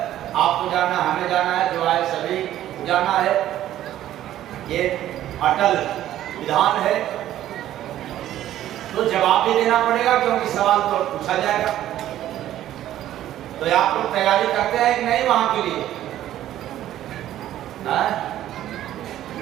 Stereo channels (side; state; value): left; quieter; 12.7 dB